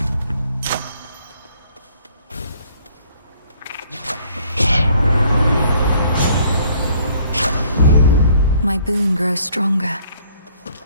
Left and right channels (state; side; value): inverted; both; correlation -0.60